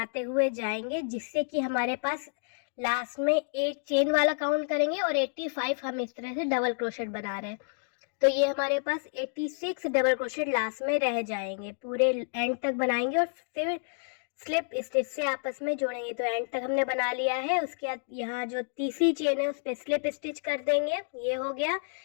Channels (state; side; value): silent; right; digital silence